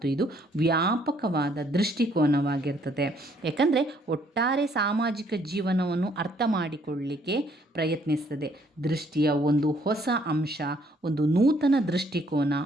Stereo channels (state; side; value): normal; both; correlation 0.66